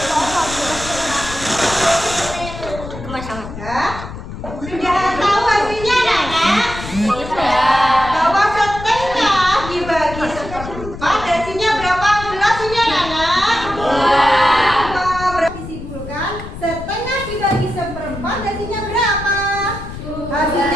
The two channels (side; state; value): left; noise; rumble, 11 dB below the sound